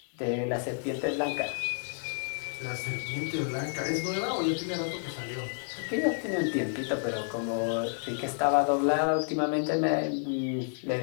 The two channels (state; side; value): silent; right; 58 dB below the other